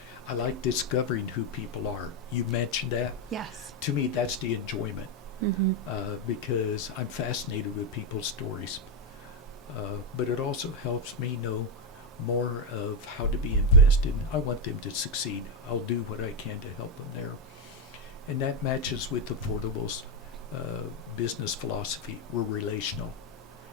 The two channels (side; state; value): both; normal; correlation 0.06